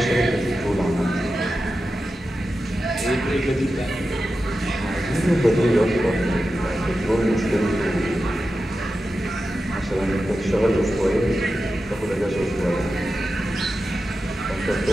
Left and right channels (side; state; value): both; normal; correlation 0.92